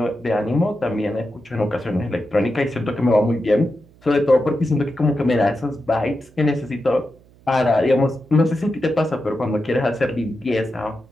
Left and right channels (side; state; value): right; noise; hum, 28 dB below the sound